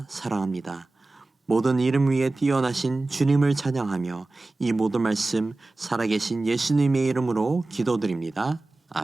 사랑합니다. 모든 이름 위에 뛰어나신 주님을 찬양하며 이 모든 말씀 살아계신 예수님의 이름으로 기도드립니다.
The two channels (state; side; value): quieter; left; 3.1 dB